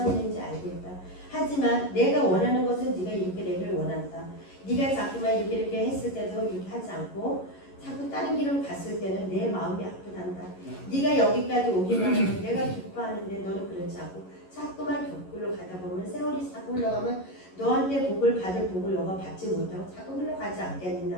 있는지 알겠다. 하지만 내가 원하는 것은 네가 이렇게 되기를 원한다. 네가 자꾸만 이렇게 했을 때도 이렇게 하지 않고 자꾸 다른 길을 갔을 때는 내 마음이 아프단다. 네가 여기까지 오기만 하면 내가 기뻐하는데 너는 그렇지 않고 자꾸만 격굴로 가다 보면 세월이 자꾸 흘러가면 너한테 복을 받을 복을 너가 받지 못하고 자꾸 흘러가지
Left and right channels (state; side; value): late; right; 11 ms